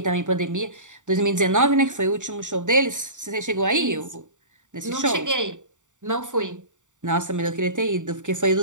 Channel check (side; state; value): left; late; 0.86 ms